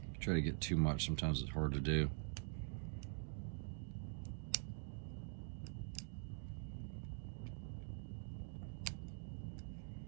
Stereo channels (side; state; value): left; silent; digital silence